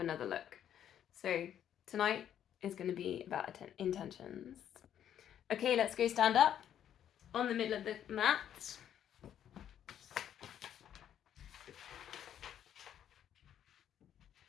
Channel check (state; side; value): quieter; right; 10.0 dB